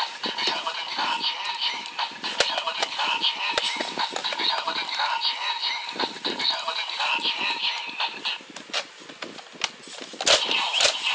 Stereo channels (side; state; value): both; identical; correlation 1.00